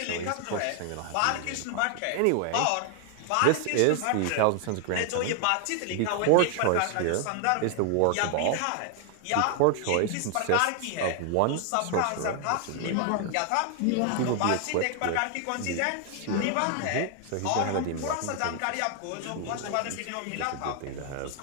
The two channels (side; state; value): both; different; correlation 0.00